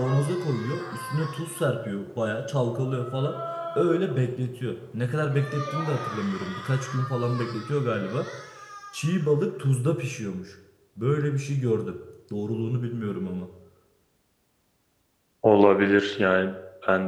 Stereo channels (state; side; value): identical; both; correlation 1.00